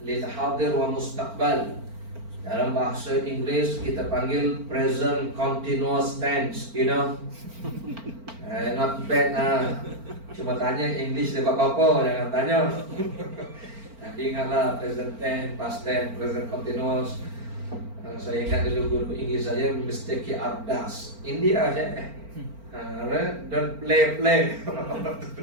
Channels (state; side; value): late; left; 4.4 ms